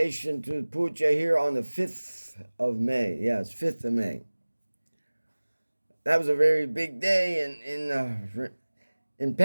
to puja here on the 5th of May. Yes, 5th of May. That was a very big day in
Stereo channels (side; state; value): both; inverted; correlation -1.00